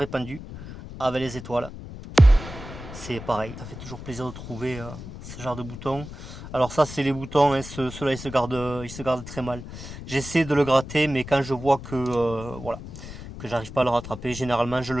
avec les étoiles. C'est pareil, ça fait toujours plaisir de trouver ce genre de boutons. Alors ça, c'est les boutons, hein, ceux-là ils se gardent très mal. J'essaie de le gratter, mais quand je vois que voilà, que j'arrive pas à le rattraper, généralement je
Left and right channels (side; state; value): left; noise; rumble, 12 dB below the sound